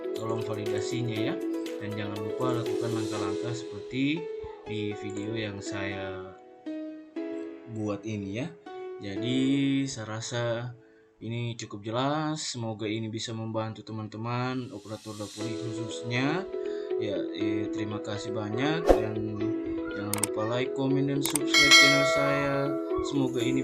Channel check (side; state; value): both; identical; correlation 1.00